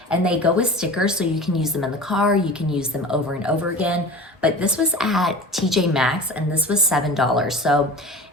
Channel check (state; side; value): normal; both; correlation 0.36